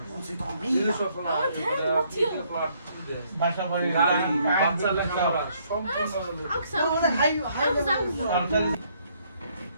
বাসা বাড়ি গাড়ি বাচ্চা লেখাপড়া সম্পূর্ণ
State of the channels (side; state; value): both; inverted; correlation -0.68